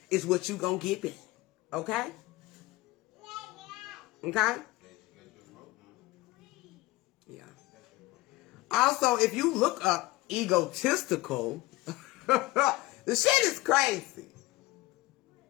is what you're going to get back. Okay? Okay? Yeah. Also, if you look up egotistical, the shit is crazy.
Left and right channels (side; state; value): right; quieter; 19.5 dB